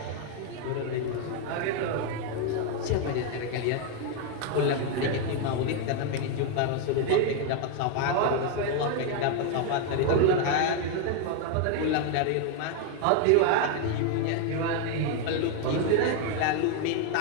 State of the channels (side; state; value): both; different; correlation 0.01